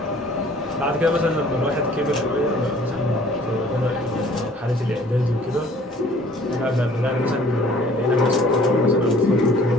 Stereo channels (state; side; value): normal; both; correlation 0.54